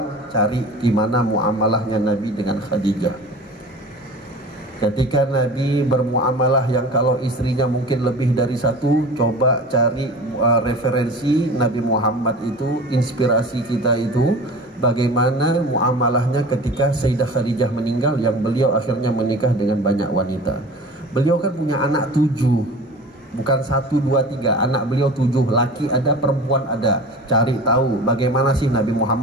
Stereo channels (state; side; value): normal; both; correlation 0.38